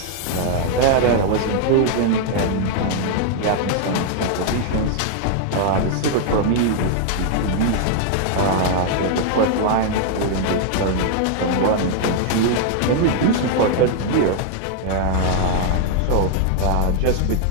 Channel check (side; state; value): both; different; correlation 0.00